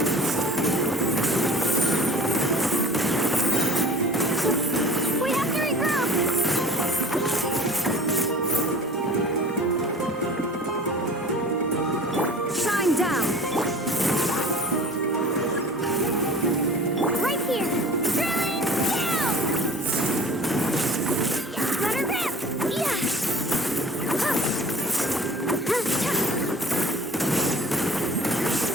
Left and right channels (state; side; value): normal; both; correlation 0.43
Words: We have to regroup. Shine down! Right here! Drilling down. Let her rip. Yeah.